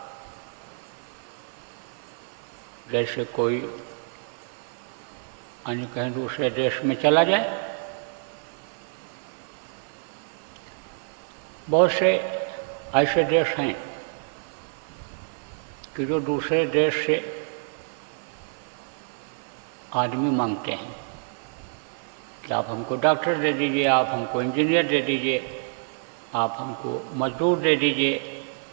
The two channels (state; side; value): silent; left; digital silence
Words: जैसे कोई अन्य कहीं दूसरे देश में चला जाए। बहुत से ऐसे देश हैं कि जो दूसरे देश से आदमी मांगते हैं कि आप हमको डॉक्टर दे दीजिए, आप हमको इंजीनियर दे दीजिए, आप हमको मजदूर दे दीजिए।